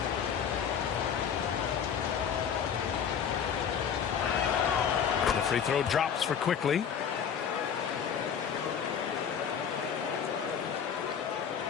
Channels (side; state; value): right; quieter; 7.7 dB